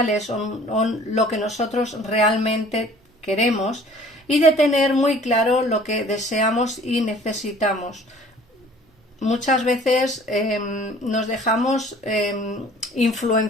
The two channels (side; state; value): both; normal; correlation 0.51